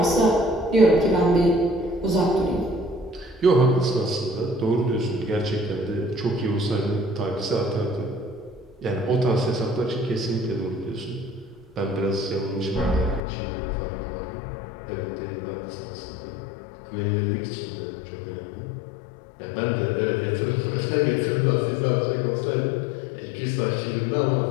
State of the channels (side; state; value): right; drops out; at 13.2 s